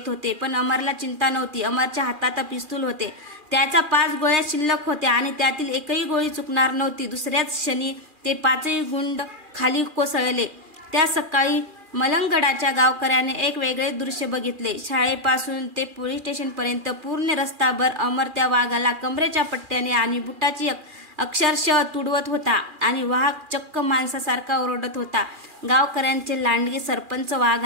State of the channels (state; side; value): late; left; 2.4 ms